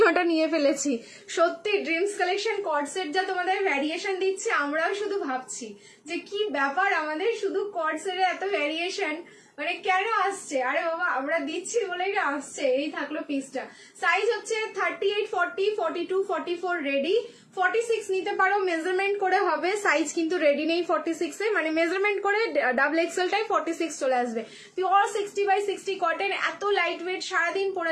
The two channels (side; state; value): both; identical; correlation 1.00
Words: নিয়ে ফেলেছি। সত্যি ড্রিমস কালেকশন কট সেট যা তোমাদের ভ্যারিয়েশন দিচ্ছে, আমরাও শুধু ভাবছি যে কি ব্যাপার, আমাদের শুধু কট সেটে এত ভ্যারিয়েশন মানে কেন আসছে? আরে বাবা, আমরা দিচ্ছি বলেই না আসছে। এই থাকলো পিসটা। সাইজ হচ্ছে 38, 40, 42, 44 রেডি। 46 নিতে পারো, মেজারমেন্ট করে হবে। সাইজ কিন্তু রেডি নেই 46 এ, মানে মেজারমেন্ট করে ডাবল এক্সেলটাই 46 চলে আসবে। পিওর 60x60 কটন, এত লাইট ওয়েট, সারাদিন